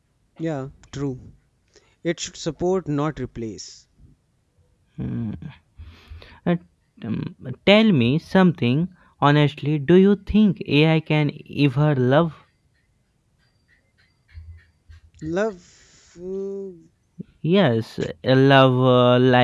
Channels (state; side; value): identical; both; correlation 1.00